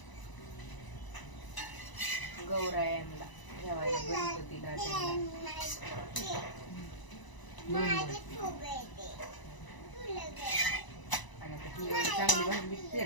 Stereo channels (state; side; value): late; right; 1.0 ms